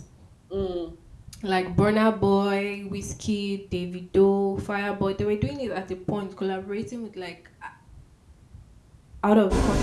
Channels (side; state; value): both; identical; correlation 1.00